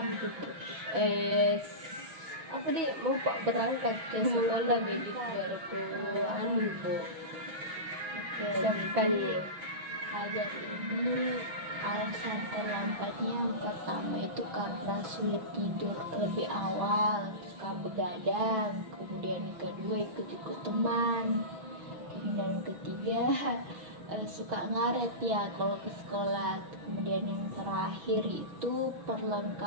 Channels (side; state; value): left; late; 6.1 ms